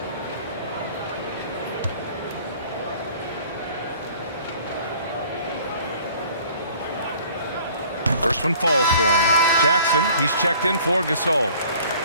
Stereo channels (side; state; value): both; inverted; correlation -0.52